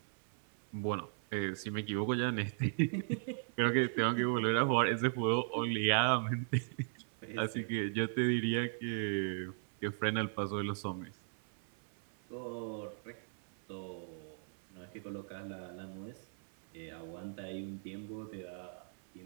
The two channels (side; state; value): left; silent; 52 dB below the other